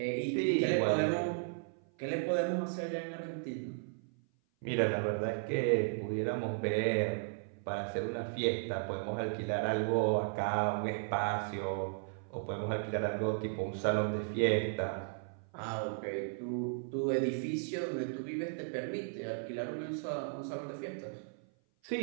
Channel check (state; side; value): silent; left; 54 dB below the other